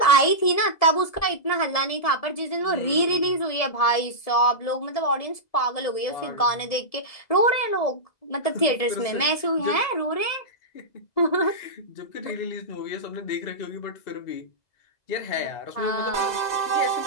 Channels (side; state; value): right; late; 1.7 ms